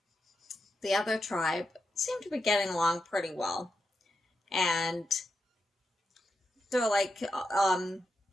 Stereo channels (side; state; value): both; normal; correlation 0.86